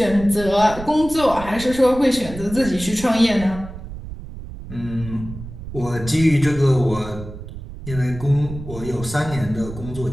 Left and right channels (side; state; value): right; noise; rumble, 12 dB below the sound